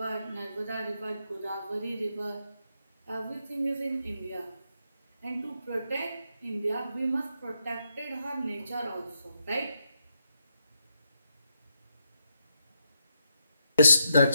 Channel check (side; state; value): both; inverted; correlation -0.82